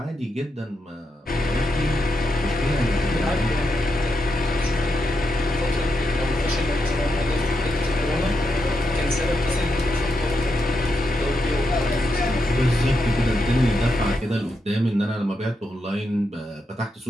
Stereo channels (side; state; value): both; normal; correlation 0.84